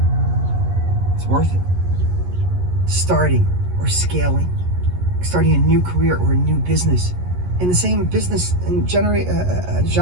It's worth it. Starting or scaling, starting a new career or a new business in the same business and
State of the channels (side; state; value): left; late; 11 ms